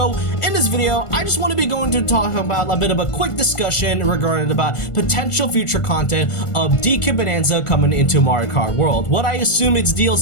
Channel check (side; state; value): right; late; 1.4 ms